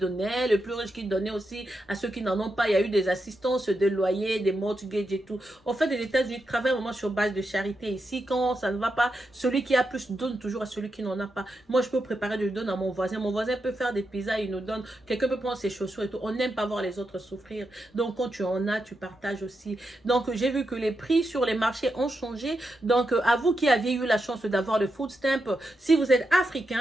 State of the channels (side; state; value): both; normal; correlation 0.86